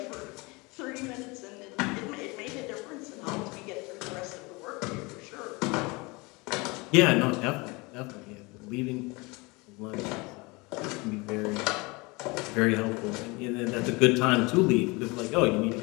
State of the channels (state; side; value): quieter; right; 25.7 dB